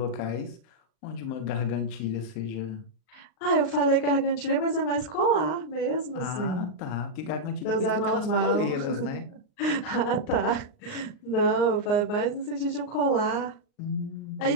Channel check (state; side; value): late; right; 38 ms